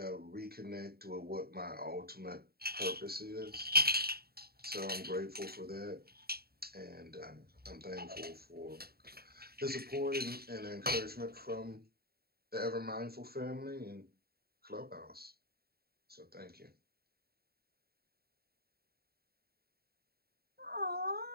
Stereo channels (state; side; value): late; left; 0.45 ms